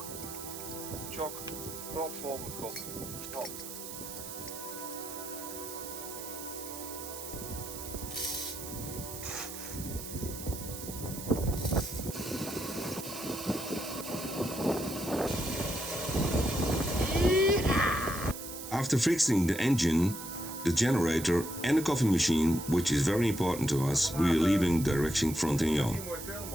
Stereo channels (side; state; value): right; noise; hiss, 10 dB below the sound